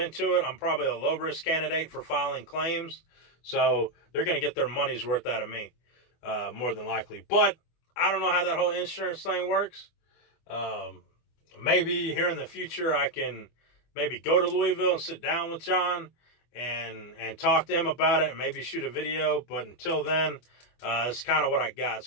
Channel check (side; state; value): right; late; 24 ms